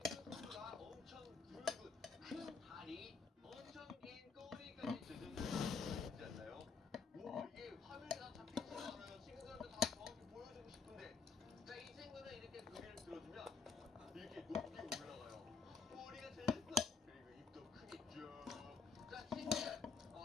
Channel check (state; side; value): quieter; right; 5.2 dB